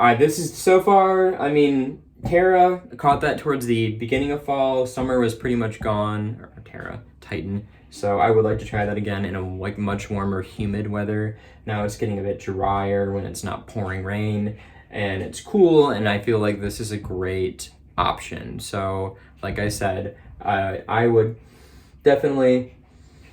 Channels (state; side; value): identical; both; correlation 1.00